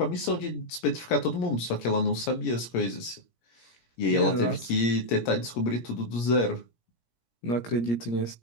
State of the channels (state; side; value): late; right; 17 ms